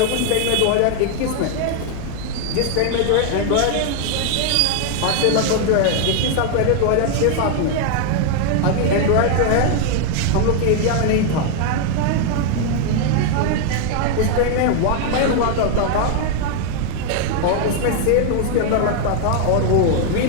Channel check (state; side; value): different; both; correlation 0.00